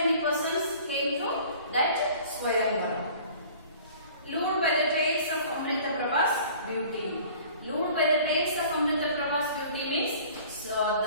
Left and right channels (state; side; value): inverted; both; correlation -0.47